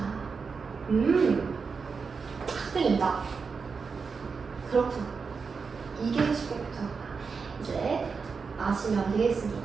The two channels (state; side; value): quieter; left; 5.2 dB